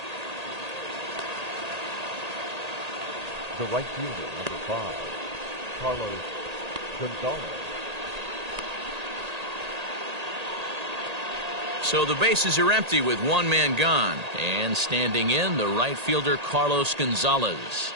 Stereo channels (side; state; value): left; late; 1.8 ms